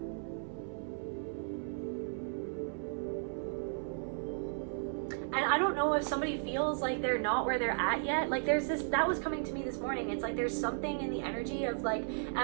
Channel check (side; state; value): left; silent; 54 dB below the other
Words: And I don't know if somebody feels like they're not where they're at yet. Like there's this, that was coming to me this morning. It's like there's something in the energy of like,